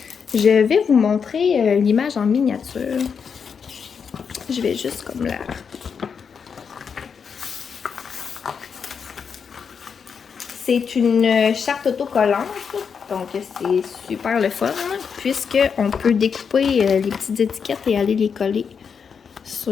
Je vais vous montrer l'image en miniature. Je vais juste comme là. C'est une charte autocollante, donc c'est super le fun, puisqu'on peut découper les petites étiquettes et aller les coller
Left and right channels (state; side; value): quieter; right; 6.4 dB